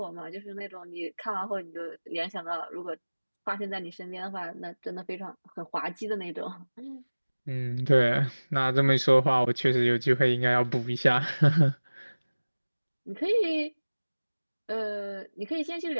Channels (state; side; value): inverted; both; correlation -1.00